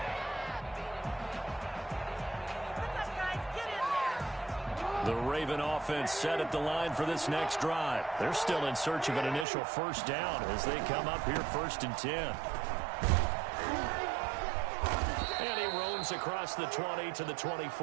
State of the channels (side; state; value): left; drops out; at 9.5 s